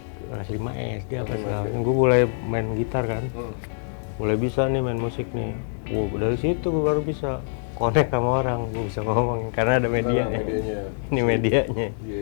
kelas 5 SD gue mulai main gitar kan. Mulai bisa nih main musik nih. Dari situ gue baru bisa connect sama orang, gue bisa ngomong karena ada medianya. Ini medianya.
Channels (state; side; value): silent; right; digital silence